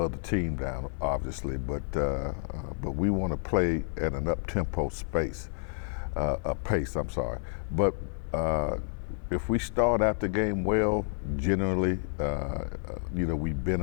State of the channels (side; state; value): right; silent; 58 dB below the other